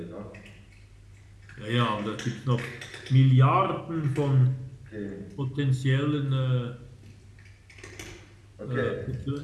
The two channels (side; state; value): both; identical; correlation 1.00